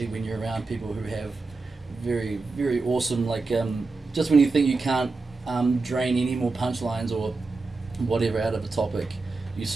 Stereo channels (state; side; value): quieter; left; 3.8 dB